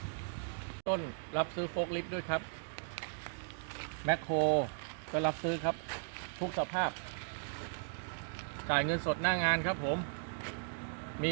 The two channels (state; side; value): silent; left; digital silence